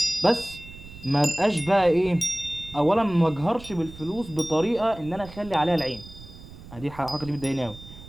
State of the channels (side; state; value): right; noise; rumble, 17 dB below the sound